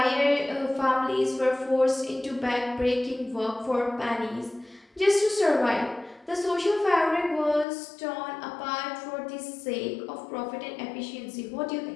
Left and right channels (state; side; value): drops out; right; at 7.7 s